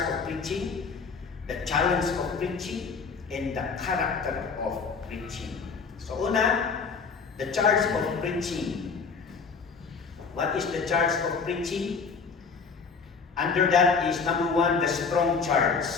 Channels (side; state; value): right; quieter; 5.2 dB